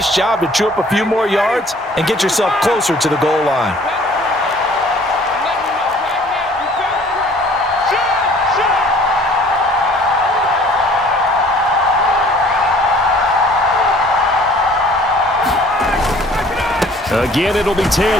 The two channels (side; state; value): both; normal; correlation 0.53